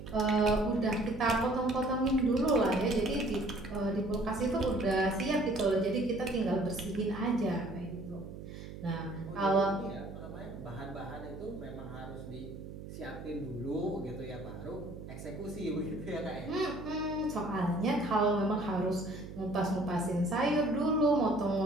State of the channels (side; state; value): right; noise; hum, 11 dB below the sound